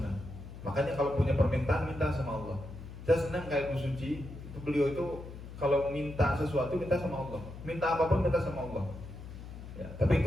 Makanya kalau punya permintaan, minta sama Allah. Saya senang kayak Bu Suci, itu beliau itu kalau minta sesuatu, minta sama Allah. Minta apapun, minta sama Allah. Ya, tapi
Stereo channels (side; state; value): left; noise; hum, 12 dB below the sound